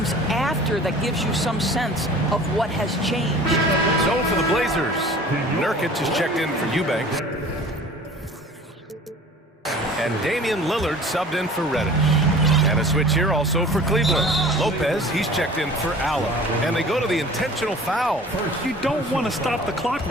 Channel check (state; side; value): normal; both; correlation 0.45